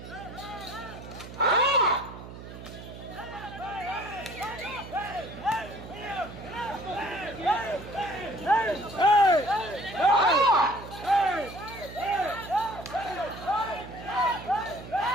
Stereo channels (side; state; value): right; noise; hum, 13 dB below the sound